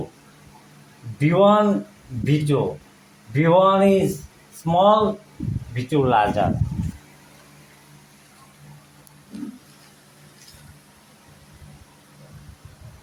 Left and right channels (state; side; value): identical; both; correlation 1.00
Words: B1 B2 B1 is small, B2 larger.